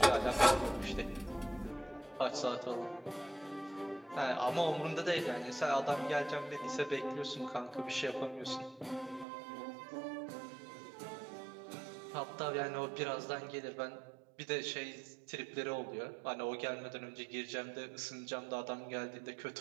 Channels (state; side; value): drops out; left; at 9.2 s